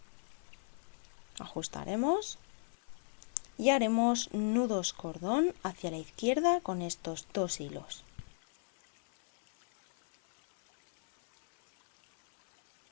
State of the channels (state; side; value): silent; right; 54 dB below the other